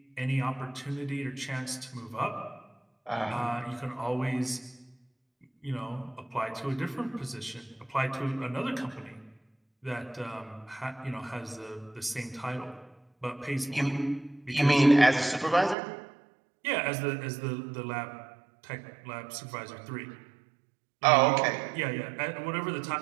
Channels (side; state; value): left; drops out; at 15.8 s